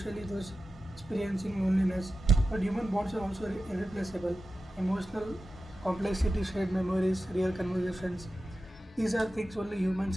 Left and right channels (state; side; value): normal; both; correlation 0.93